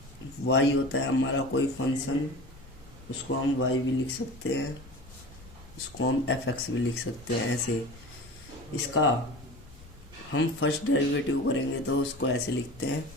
y होता है हमारा कोई फंक्शन, उसको हम y भी लिख सकते हैं, उसको हम fx भी लिख सकते हैं। ऐसे इसका हम फर्स्ट डेरिवेटिव करेंगे तो उसको ऐसे लिखते हैं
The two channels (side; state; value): left; noise; rumble, 21 dB below the sound